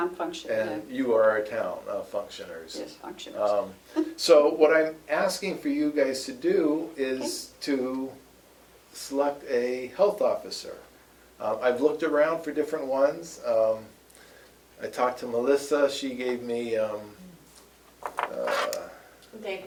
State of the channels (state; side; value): identical; both; correlation 1.00